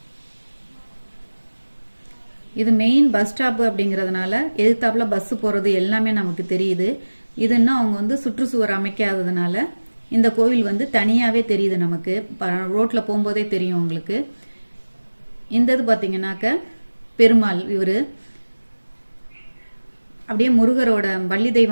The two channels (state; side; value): inverted; both; correlation -1.00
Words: இது மெயின் பஸ் ஸ்டாப் அப்படிங்கறதுனால எதிர்த்தாப்புல பஸ் போறது எல்லாமே நமக்கு தெரியுது. இது இன்னும் அவங்க வந்து சுற்றுச்சுவர் அமைக்காததுனால இந்த கோவில் வந்து தனியாவே தெரியுது நமக்கு. ரோட்ல போகும்போதே தெரியும் உங்களுக்கு. இந்த இது பாத்தீங்கன்னாக்க பெருமாள் இவரு அப்படியே முருகரோட வள்ளி